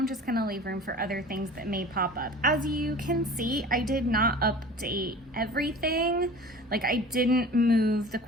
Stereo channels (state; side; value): normal; both; correlation 0.41